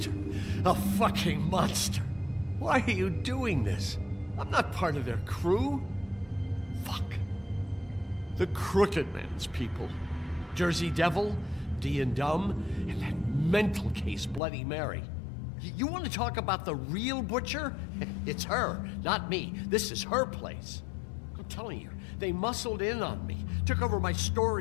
A fucking monster. Why are you doing this? I'm not part of their crew. Fuck. The Crooked Man's people. Jersey Devil, D and Dumb, and that mental case, Bloody Mary. You want to talk about the real butcher? It's her, not me. This is her place. I'm telling you, they muscled in on me, took over my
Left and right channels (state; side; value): drops out; right; at 14.4 s